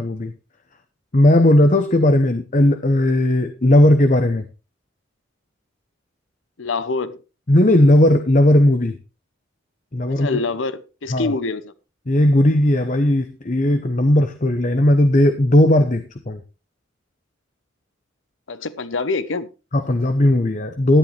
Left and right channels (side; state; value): both; normal; correlation 0.75